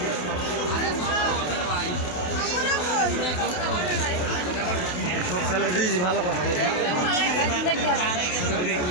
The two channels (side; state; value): right; late; 28 ms